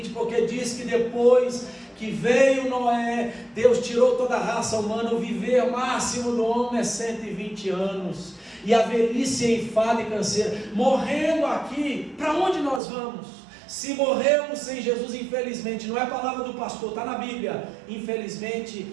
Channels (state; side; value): drops out; left; at 12.8 s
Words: porque diz que depois que veio Noé, Deus tirou toda a raça humana. O viver máximo do homem é 120 anos. E a velhice é enfado e canseira. Morrendo aqui, para onde nós vamos? Se morrermos sem Jesus, infelizmente, não é a palavra do pastor, está na Bíblia, infelizmente